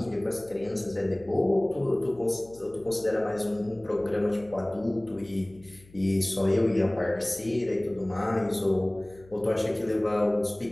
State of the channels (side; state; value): left; noise; hum, 25 dB below the sound